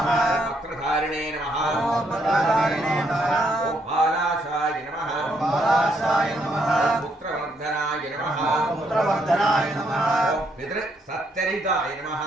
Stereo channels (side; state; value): both; normal; correlation 0.73